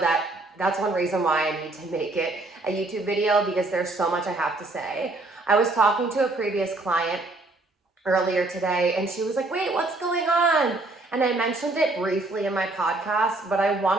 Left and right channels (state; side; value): quieter; left; 3.1 dB